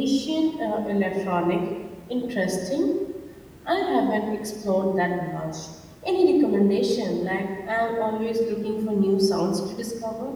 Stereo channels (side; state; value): both; identical; correlation 1.00